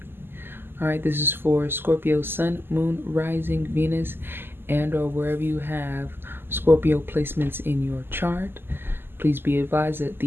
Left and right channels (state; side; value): late; left; 0.10 ms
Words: All right, this is for Scorpio Sun, Moon, Rising, Venus, and or wherever you have Scorpio placements in your chart. Please be advised that